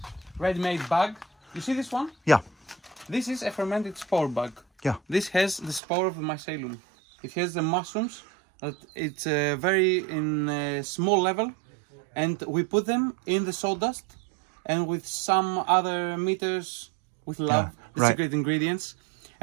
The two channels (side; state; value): left; drops out; at 5.8 s